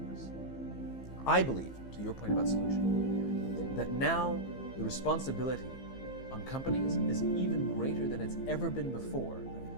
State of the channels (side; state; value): right; late; 15 ms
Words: I believe, to your point about solution, that now the responsibility on companies is even greater than it's ever been before